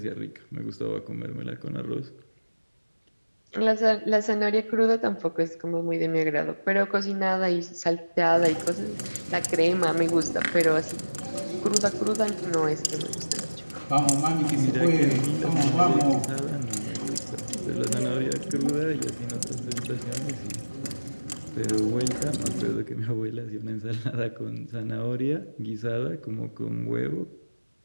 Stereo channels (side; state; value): both; inverted; correlation -1.00